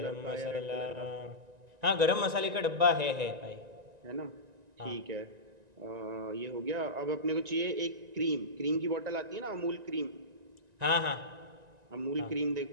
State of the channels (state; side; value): late; left; 1.9 ms